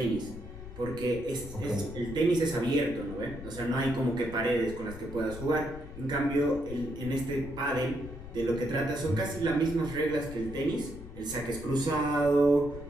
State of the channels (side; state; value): left; noise; rumble, 13 dB below the sound